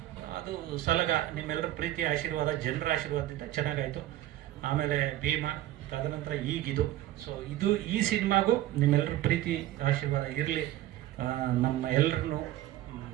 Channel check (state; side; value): quieter; left; 14.4 dB